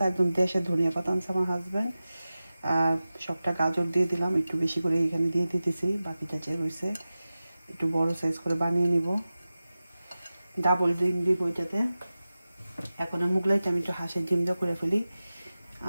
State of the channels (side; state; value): both; inverted; correlation -0.95